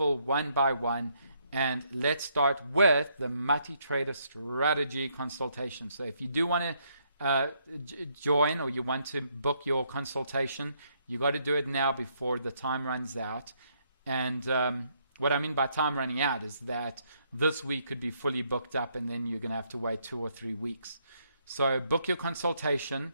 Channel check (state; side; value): inverted; both; correlation -0.73